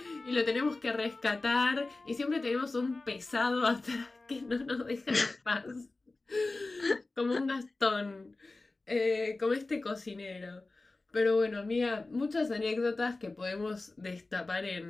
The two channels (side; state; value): right; quieter; 3.3 dB